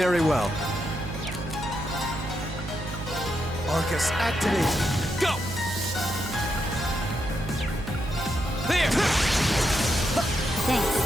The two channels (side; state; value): right; noise; hum, 10 dB below the sound